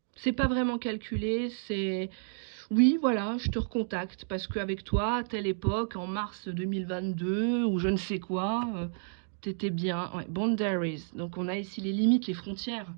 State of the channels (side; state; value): left; silent; digital silence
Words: C'est pas vraiment calculé, c'est... Oui, voilà, je te recontacte parce qu'avec toi, à telle époque, en mars 2022, ou je ne sais quoi, t'étais bien. Ouais, boundaries. Donc on a ici les limites, les frontières.